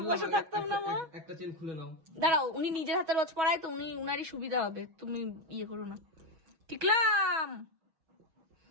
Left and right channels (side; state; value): left; late; 6.2 ms